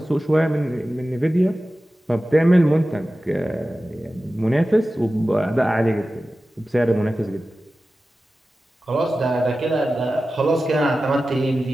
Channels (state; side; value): normal; both; correlation 0.95